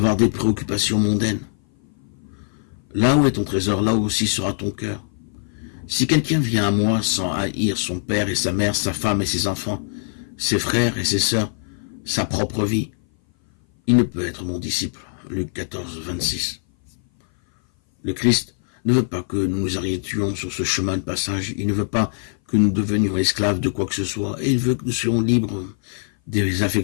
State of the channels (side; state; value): right; silent; 58 dB below the other